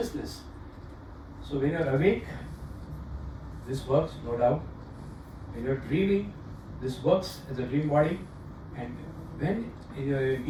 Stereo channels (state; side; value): identical; both; correlation 1.00